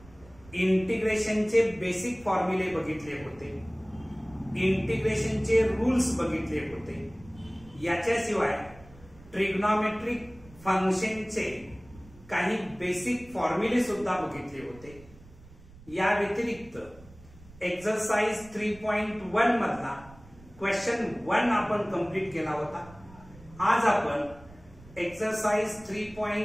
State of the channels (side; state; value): right; noise; rumble, 22 dB below the sound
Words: इंटिग्रेशनचे बेसिक फॉर्म्युले बघितले होते, इंटिग्रेशनचे रूल्स बघितले होते। याच्याशिवाय ट्रिग्नोमेट्रिक फंक्शनचे काही बेसिक फॉर्म्युले सुद्धा बघितले होते। या व्यतिरिक्त एक्सरसाइज 3.1 मधला क्वेश्चन 1 आपण कंप्लीट केला होता। आज आपण एक्सरसाइज